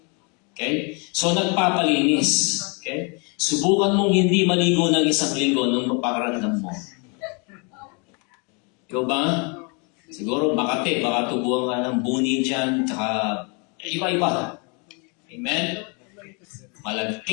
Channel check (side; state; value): right; quieter; 33.5 dB